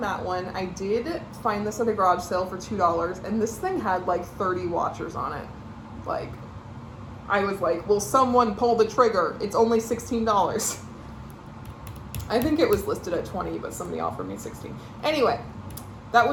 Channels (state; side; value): identical; both; correlation 1.00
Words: that one. I did find this at a garage sale for $2, and this thing had like 30 watchers on it. Like, I was like, will someone pull the trigger? It's only $16. I think it was listed at 20, but somebody offered me 16. Anyway, that